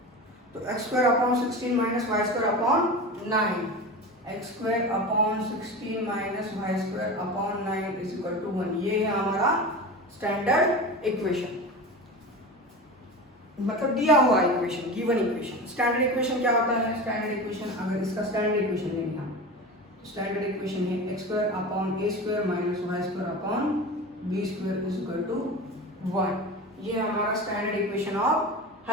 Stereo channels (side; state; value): both; normal; correlation 0.29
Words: तो x square upon 16 minus Y square upon 9, x square upon 16 minus Y square upon 9 is equal to 1। ये है हमारा स्टैंडर्ड इक्वेशन, मतलब दिया हुआ equation, given equation. Standard equation क्या होता है, स्टैंडर्ड इक्वेशन अगर इसका स्टैंडर्ड इक्वेशन लेंगे हम, स्टैंडर्ड इक्वेशन है x square upon A square minus Y square upon B square is equal to 1। ये हमारा स्टैंडर्ड इक्वेशन ऑफ